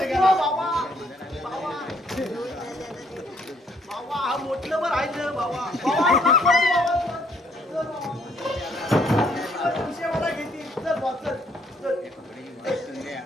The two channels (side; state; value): both; normal; correlation 0.67